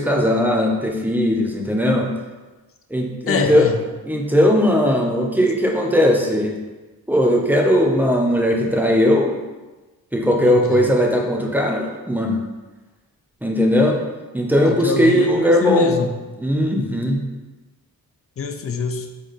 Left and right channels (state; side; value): normal; both; correlation 0.62